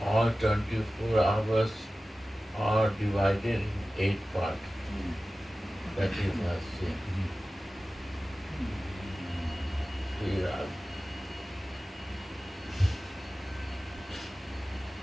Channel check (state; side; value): normal; both; correlation 0.96